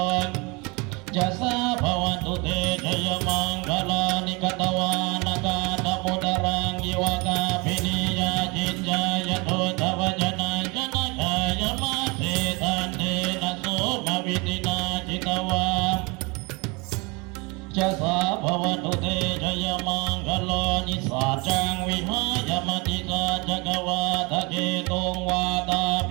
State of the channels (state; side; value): quieter; left; 28.1 dB